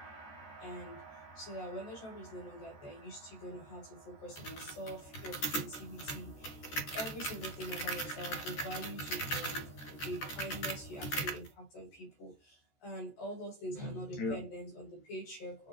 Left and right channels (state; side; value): late; right; 14 ms